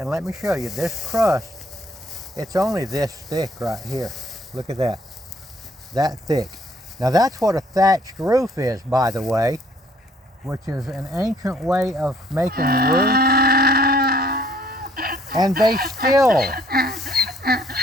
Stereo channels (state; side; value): normal; both; correlation 0.62